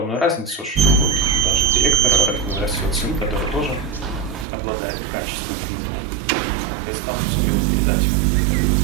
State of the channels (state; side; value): drops out; left; at 4.5 s